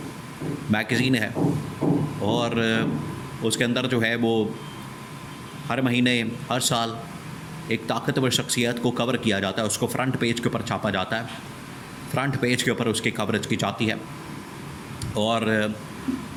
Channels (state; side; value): identical; both; correlation 1.00